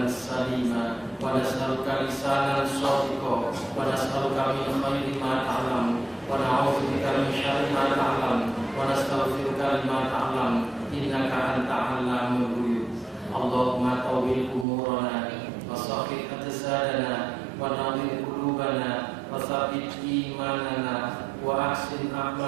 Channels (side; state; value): left; drops out; at 14.7 s